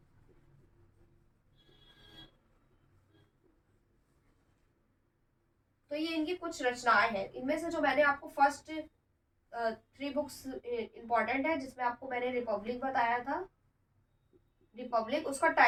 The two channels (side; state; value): both; identical; correlation 1.00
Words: तो ये इनकी कुछ रचनाएं हैं। इनमें से जो मैंने आपको फर्स्ट 3 बुक्स इंपॉर्टेंट है, जिसमें आपको मैंने रिपब्लिक बताया था। रिपब्लिक, उसका